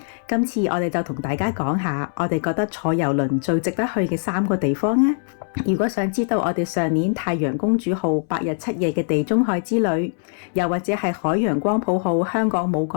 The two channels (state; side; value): silent; right; 64 dB below the other